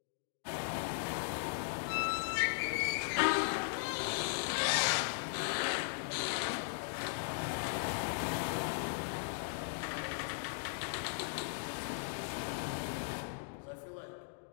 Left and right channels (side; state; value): right; silent; digital silence